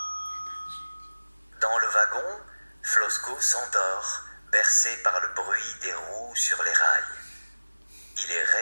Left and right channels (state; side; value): inverted; both; correlation -1.00